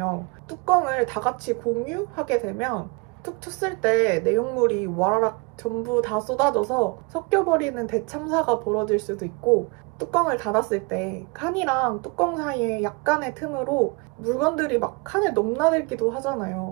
뚜껑을 다 같이 공유하게 되면 툭 쳤을 때 내용물이 와라락 전부 다 쏟아져서 섞여버리는 대참사가 벌어질 수도 있고 뚜껑을 닫았을 때 칸이랑 뚜껑 사이에 약간의 틈으로 물건들이 막 칸에 넘나들기도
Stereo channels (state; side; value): quieter; left; 29.4 dB